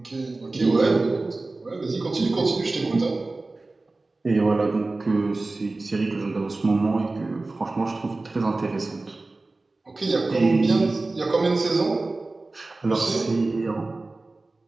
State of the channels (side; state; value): left; quieter; 3.3 dB